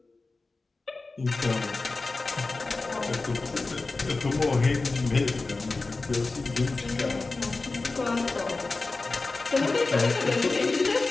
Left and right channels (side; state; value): right; quieter; 3.6 dB